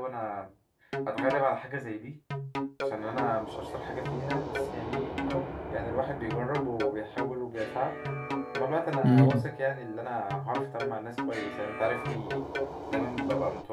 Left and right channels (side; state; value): both; identical; correlation 1.00